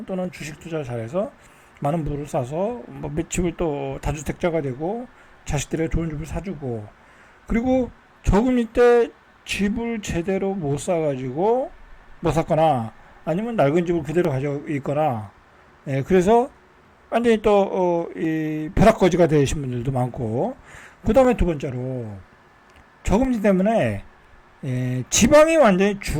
또는 주식 투자를 잘해서 많은 부를 쌓아서 뭐 집을 또 다주택자가 되고 자식들에게 좋은 집을 사주고, 그리고 저금리 때 집을 제대로 못 사가지고 못 샀거나 아니면 낡은 집을 그대로 가지고 있거나, 그래서 완전히 또 벼락거지가 되신 분들도 많고, 그 다음에 두 번째로 저금리 때문에 지방이 완전히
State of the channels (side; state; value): both; identical; correlation 1.00